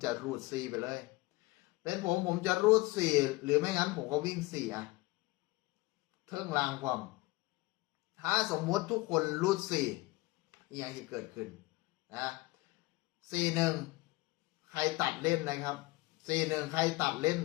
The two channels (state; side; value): quieter; right; 21.2 dB